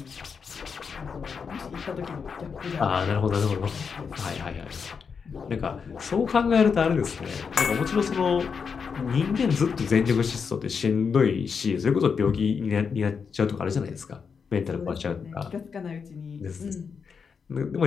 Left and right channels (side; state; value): right; quieter; 6.0 dB